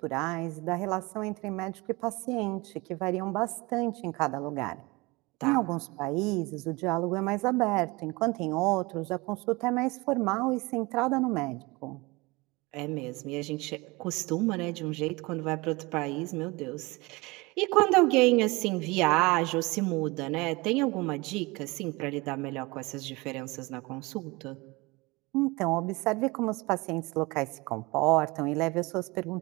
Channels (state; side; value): quieter; left; 24.1 dB